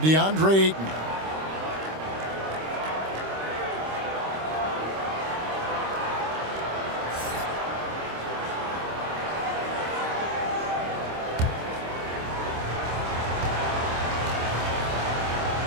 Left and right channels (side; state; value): left; late; 26 ms